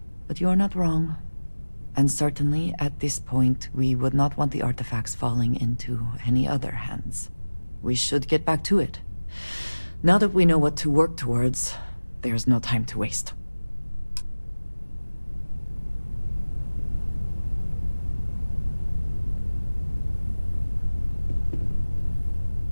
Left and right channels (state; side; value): inverted; both; correlation -1.00